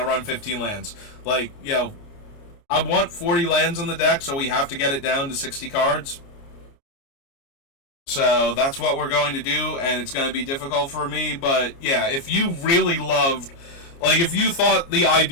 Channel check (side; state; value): right; late; 29 ms